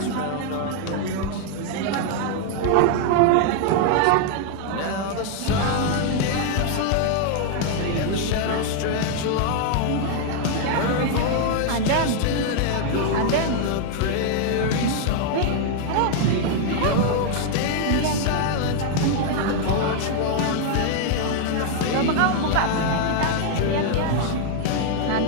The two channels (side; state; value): both; different; correlation 0.00